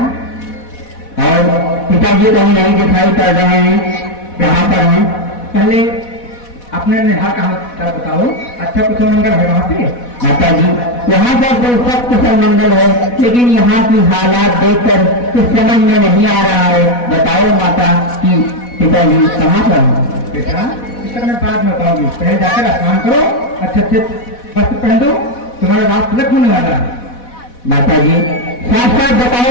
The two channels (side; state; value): right; late; 4.1 ms